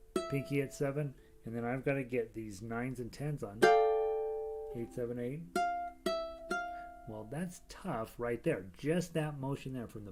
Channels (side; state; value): both; identical; correlation 1.00